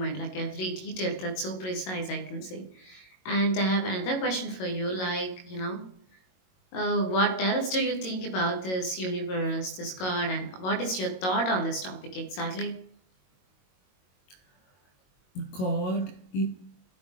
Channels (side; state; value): right; late; 22 ms